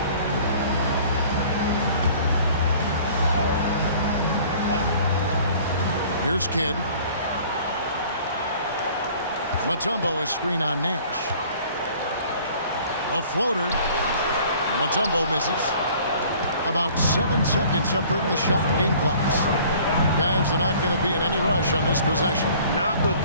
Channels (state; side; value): inverted; both; correlation -0.51